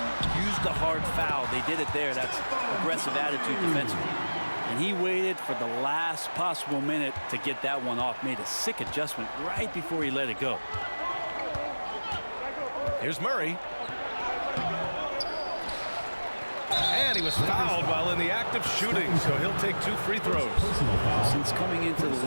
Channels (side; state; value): both; inverted; correlation -1.00